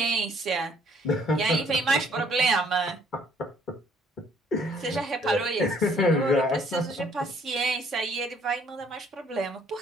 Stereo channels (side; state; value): both; normal; correlation 0.63